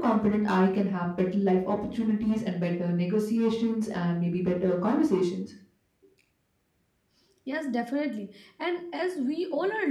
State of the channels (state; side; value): identical; both; correlation 1.00